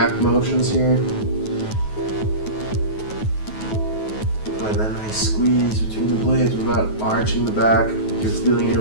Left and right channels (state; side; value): late; right; 9.3 ms